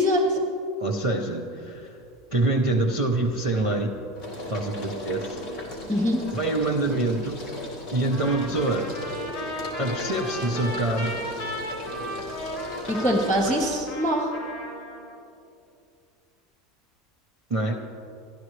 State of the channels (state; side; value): normal; both; correlation 0.32